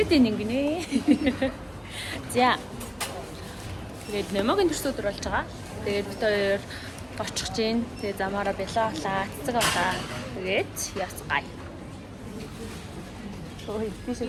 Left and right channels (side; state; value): both; identical; correlation 1.00